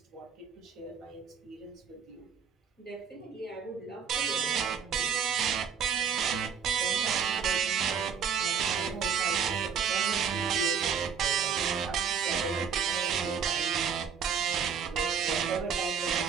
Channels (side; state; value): left; quieter; 7.0 dB